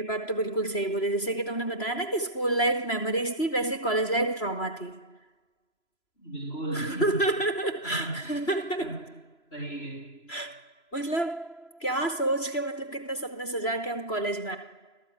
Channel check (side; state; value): right; late; 3.0 ms